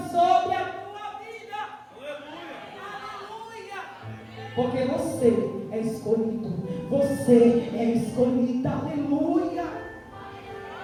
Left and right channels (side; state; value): both; identical; correlation 1.00